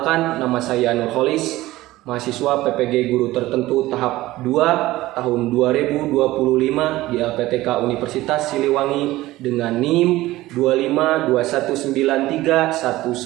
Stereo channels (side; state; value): left; quieter; 17.3 dB